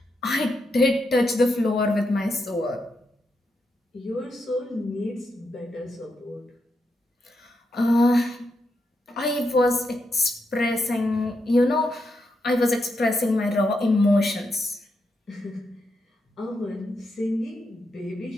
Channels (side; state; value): both; normal; correlation 0.83